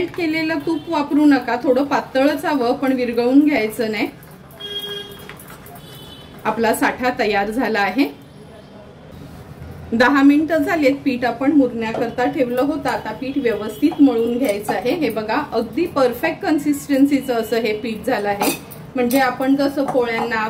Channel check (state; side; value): identical; both; correlation 1.00